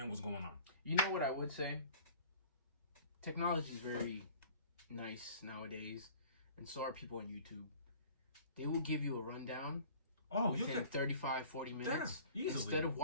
what's going on. You know what I would say? Technology is very nice nowadays, and so are people on YouTube. They will give you a rundown. Oh, within 35, 40 minutes. Yeah, instead of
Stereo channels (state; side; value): inverted; both; correlation -0.47